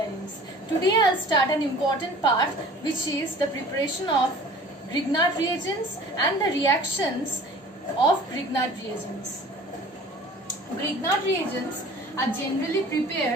Today I'll start an important part which is the preparation of Grignard reagents and the reactions of Grignard reagents. Grignard reagents are generally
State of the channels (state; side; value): normal; both; correlation 0.46